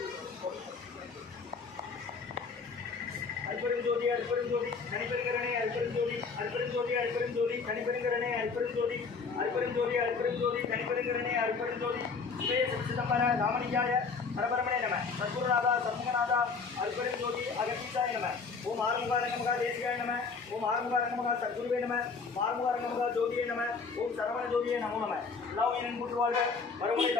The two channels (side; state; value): right; quieter; 4.9 dB